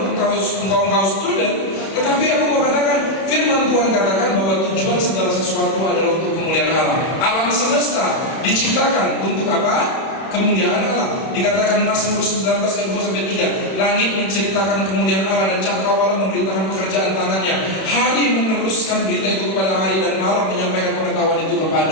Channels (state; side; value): late; right; 31 ms